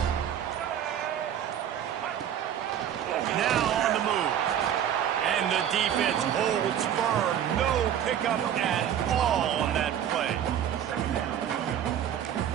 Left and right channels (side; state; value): left; quieter; 9.8 dB